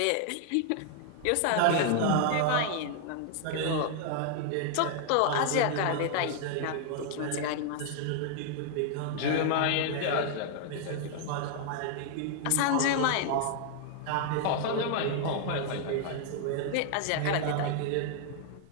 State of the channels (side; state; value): both; different; correlation 0.00